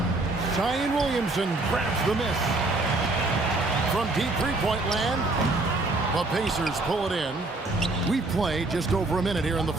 Zion Williamson grabs the miss. From deep three-point land, the Pacers pull it in. We've played just over a minute here in the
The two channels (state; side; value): quieter; left; 3.0 dB